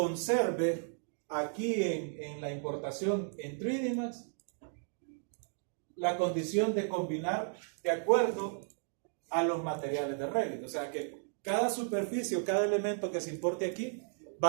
aquí en la importación en 3D Max la condición de combinar de acuerdo a los materiales de Revit. O sea que cada superficie o cada elemento que se importe aquí va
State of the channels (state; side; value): silent; left; 55 dB below the other